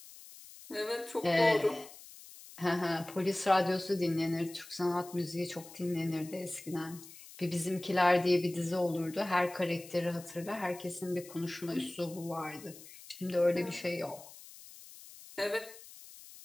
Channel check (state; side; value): noise; left; hiss, 18 dB below the sound